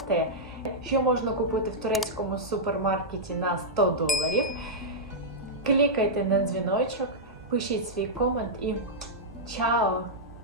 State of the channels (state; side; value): normal; both; correlation -0.09